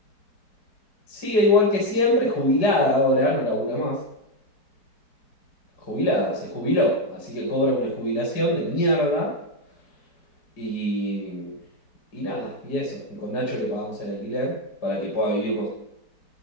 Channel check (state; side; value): late; right; 4.6 ms